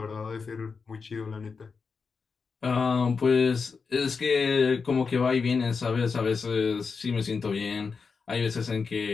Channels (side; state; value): right; quieter; 5.1 dB